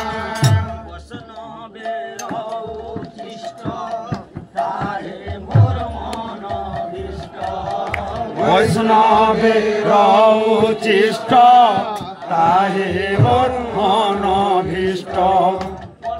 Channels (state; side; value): identical; both; correlation 1.00